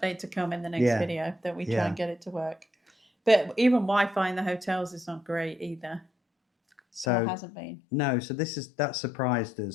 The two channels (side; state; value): right; drops out; at 7.1 s